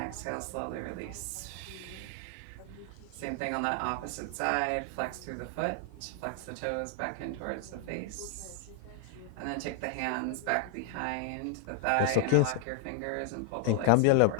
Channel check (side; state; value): both; different; correlation 0.00